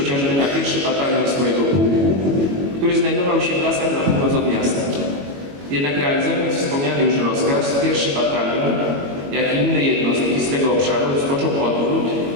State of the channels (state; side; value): late; left; 21 ms